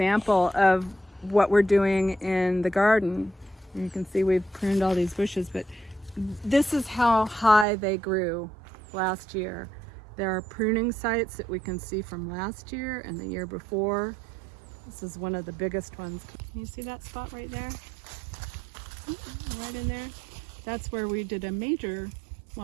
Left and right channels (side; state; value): left; drops out; at 7.7 s